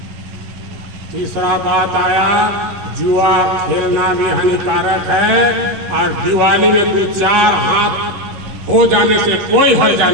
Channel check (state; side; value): late; left; 11 ms